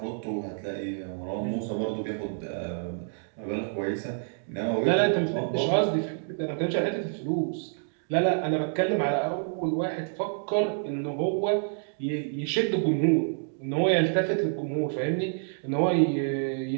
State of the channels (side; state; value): left; silent; digital silence